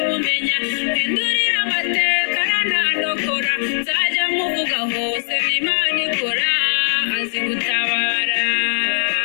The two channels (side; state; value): right; silent; 65 dB below the other